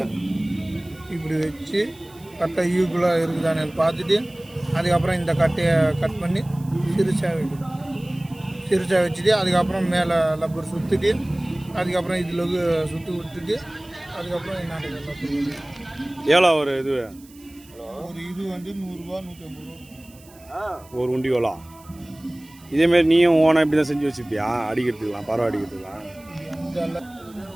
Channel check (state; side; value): noise; right; hiss, 25 dB below the sound